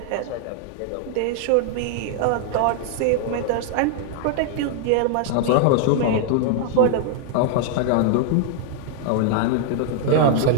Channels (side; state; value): both; different; correlation 0.00